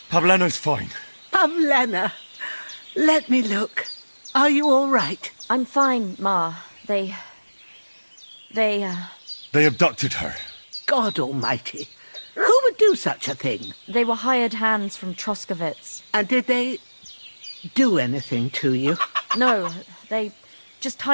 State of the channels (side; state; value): both; inverted; correlation -1.00